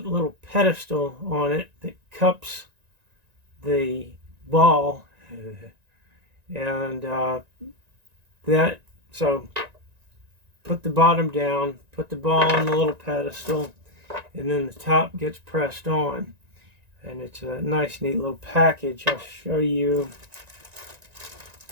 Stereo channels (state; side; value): late; left; 1.9 ms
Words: little pedestal on it that cups the ball, and that so put the bottom down, put the ball on the little pedestal, and then the top gets pressed on, and it's a nice neat little package. I'll show you.